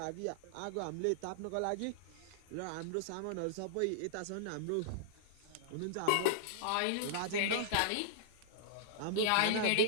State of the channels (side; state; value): both; different; correlation -0.01